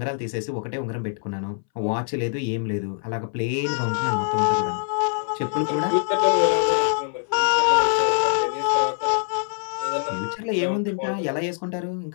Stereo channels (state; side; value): silent; right; 63 dB below the other